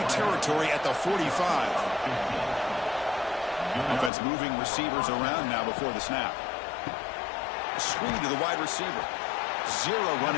territory at the 45. Offense moving receivers around now before the snap. Screen to the wide receiver. 0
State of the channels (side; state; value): right; drops out; at 4.1 s